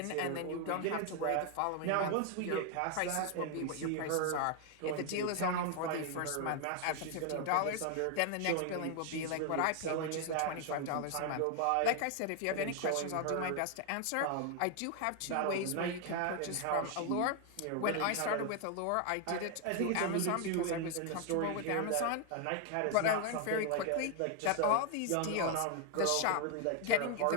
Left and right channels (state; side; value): different; both; correlation 0.00